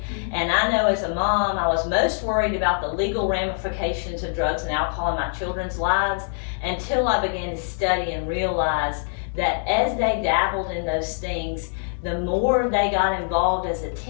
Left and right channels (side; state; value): right; silent; digital silence